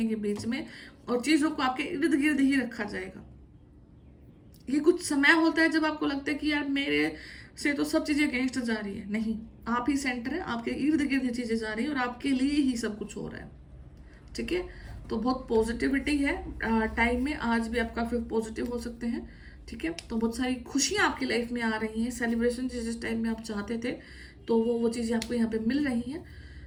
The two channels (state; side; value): identical; both; correlation 1.00